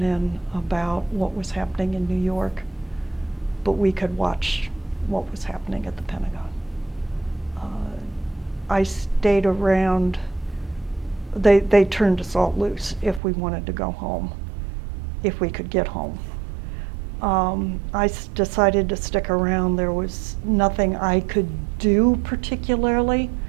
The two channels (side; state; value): left; drops out; at 13.2 s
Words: about what was happening in New York, but we could watch what was happening at the Pentagon. I stayed around. They turned us all loose if we wanted to go home, if we could get home. I decided to stick around. There was nothing I could do particularly